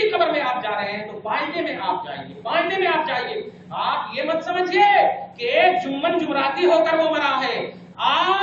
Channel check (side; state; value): both; identical; correlation 1.00